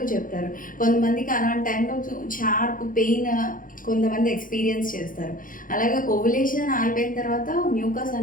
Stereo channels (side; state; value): right; late; 0.40 ms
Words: చెప్తారు. కొంతమందికి అలాంటి టైంలో షార్ప్ పెయిన్ కొంతమంది ఎక్స్పీరియన్స్ చేస్తారు. అలాగే ఓవులేషన్ అయిపోయిన తర్వాత మ్యూకస్